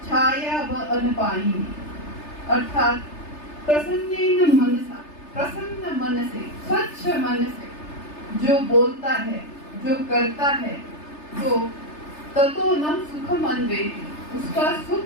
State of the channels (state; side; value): late; right; 3.3 ms